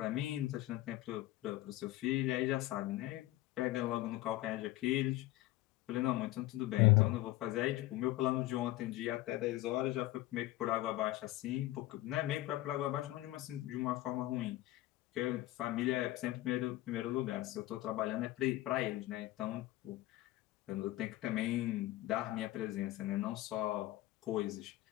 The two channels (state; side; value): quieter; right; 16.7 dB